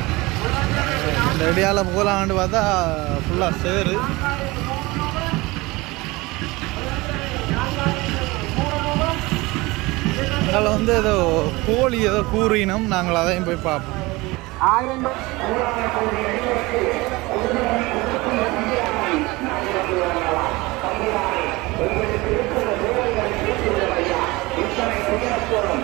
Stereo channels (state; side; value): quieter; left; 22.1 dB